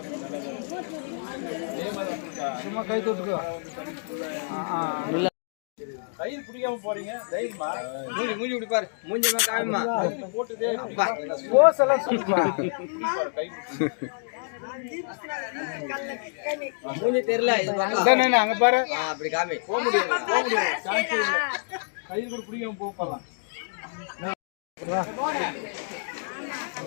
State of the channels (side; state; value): right; silent; digital silence